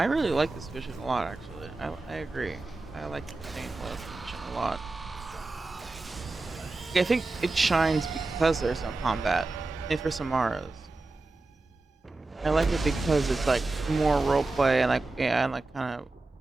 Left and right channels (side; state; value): left; quieter; 3.3 dB